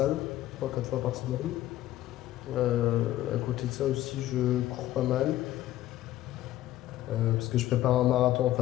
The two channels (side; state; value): right; quieter; 14.3 dB